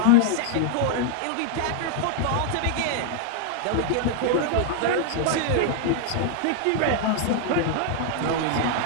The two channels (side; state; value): both; different; correlation 0.00